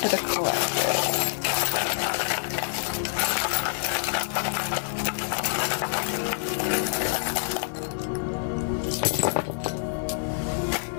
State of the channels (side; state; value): right; silent; digital silence